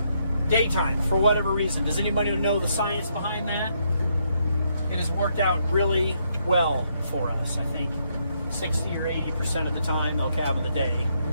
daytime for whatever reason. Does anybody know the science behind that? It has worked out really well for us. I think 60 or 80% of the time they'll calve in the day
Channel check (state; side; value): inverted; both; correlation -0.75